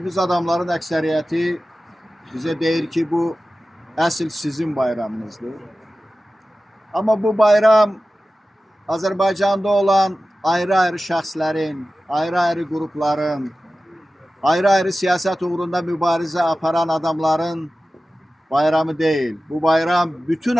adamların əksəriyyəti bizə deyir ki, bu əsl sizin bayramınızdır. Amma bu bayram Azərbaycanda olan ayrı-ayrı şəxslərin, ayrı-ayrı qrupların, ayrı-ayrı siyasət uğrunda mübarizə aparan adamların bayramı değil. Bu bayram bütün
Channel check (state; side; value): normal; both; correlation 0.95